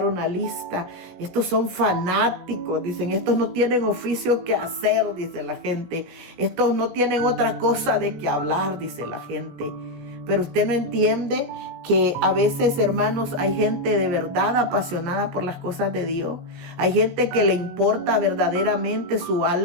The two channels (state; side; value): late; left; 17 ms